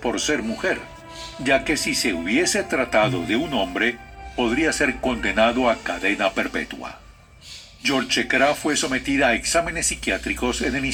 ser mujer, ya que si se hubiese tratado de un hombre, podría ser condenado a cadena perpetua. Yolchekara fue sometida a exámenes psiquiátricos en el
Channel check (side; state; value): both; identical; correlation 1.00